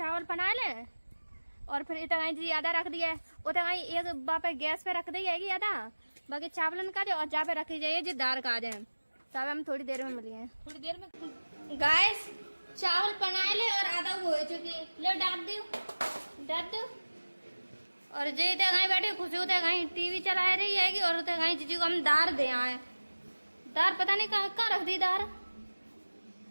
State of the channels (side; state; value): both; inverted; correlation -1.00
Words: बना लें और फिर इतना जी आधा रख दिया, उतना एक बापे गैस पे रख दी जाएगी आधा, बाकी चावलन का और जा पे रखी जाइए जी दाल का जाए। तो अब हम थोड़ी देर में मिलिए, थोड़ी देर में गाइस चावल बनाए ले और आधा हो चुकी, ले डाल दो। और जे इतने कहीं बैठे खुशी होते कहीं टीवी चला रही है और उतने कहीं जीजू को हम दार दे आए, दार पता नहीं कहाँ रख दी दार,